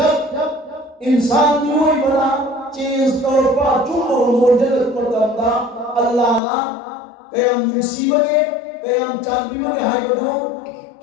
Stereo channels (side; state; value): right; drops out; at 6.4 s